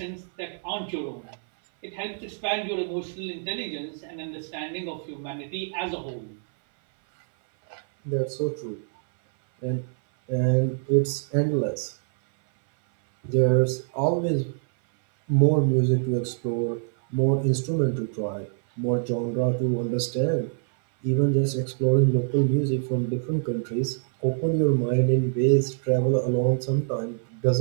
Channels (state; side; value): silent; left; 61 dB below the other